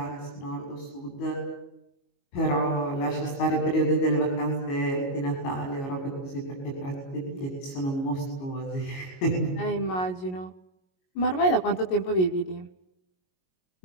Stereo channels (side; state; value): right; late; 22 ms